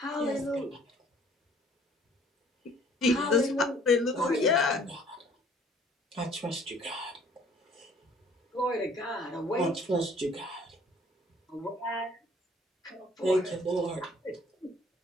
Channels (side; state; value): both; normal; correlation 0.56